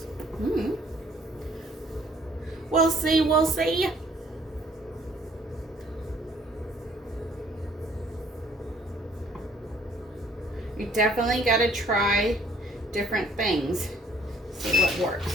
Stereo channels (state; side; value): normal; both; correlation 0.60